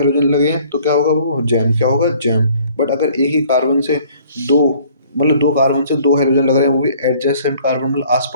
लगे हैं तो क्या होगा, वो जैम, क्या होगा, जैम। बट अगर एक ही कार्बन से दो, मतलब दो कार्बन से दो हाइड्रोजन लग रहे हैं, वो भी एडजेसेंट कार्बन, मतलब आस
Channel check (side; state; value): both; inverted; correlation -0.56